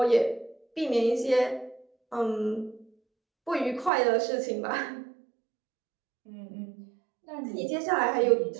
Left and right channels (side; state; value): left; drops out; at 3.9 s